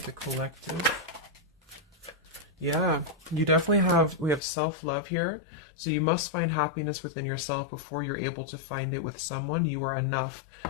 the collective? Yeah, you definitely we have self-love here. So you must find happiness within yourself before you're able to find it with someone. You are enough.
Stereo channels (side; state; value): right; drops out; at 4.4 s